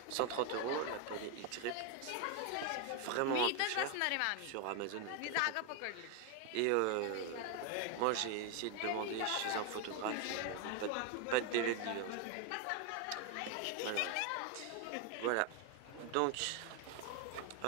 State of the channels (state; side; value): different; both; correlation 0.01